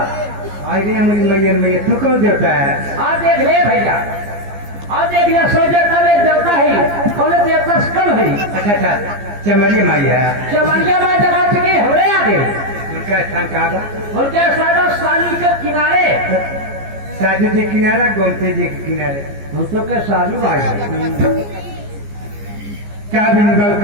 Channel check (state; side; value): late; left; 15 ms